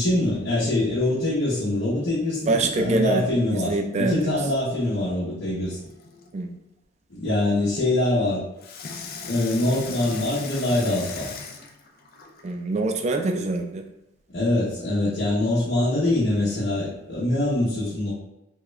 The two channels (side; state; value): both; normal; correlation 0.57